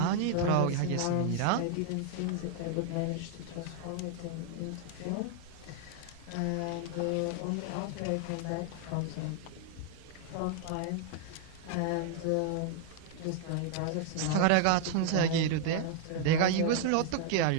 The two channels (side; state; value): both; different; correlation 0.00